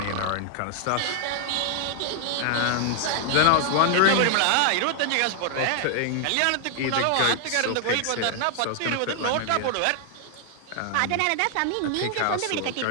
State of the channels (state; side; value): different; both; correlation 0.00